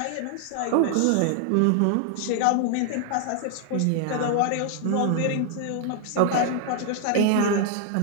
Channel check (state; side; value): different; both; correlation 0.00